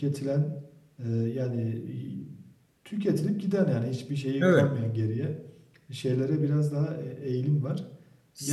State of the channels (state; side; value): identical; both; correlation 1.00